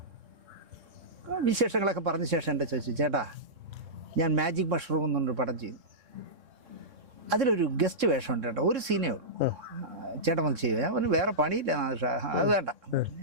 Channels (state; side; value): late; left; 3.7 ms